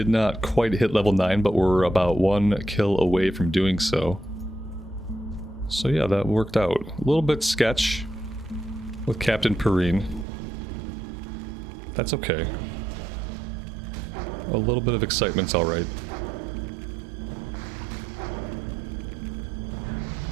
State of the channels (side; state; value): left; drops out; at 10.2 s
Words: not quite hit level 9, but we're about 1 kill away from doing so. So yeah, that worked out. A little bit sketch with Captain Perrine. That's okay. A little bit of excitement's alright.